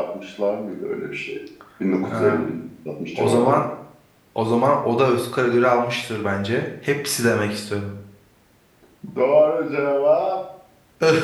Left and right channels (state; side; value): identical; both; correlation 1.00